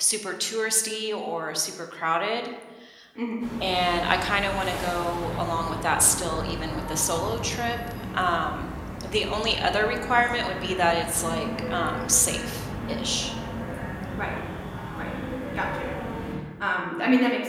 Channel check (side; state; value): both; identical; correlation 1.00